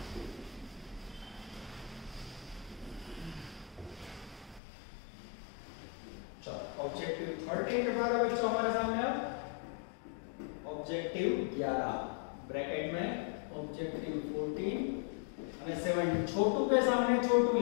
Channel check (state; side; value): drops out; right; at 4.6 s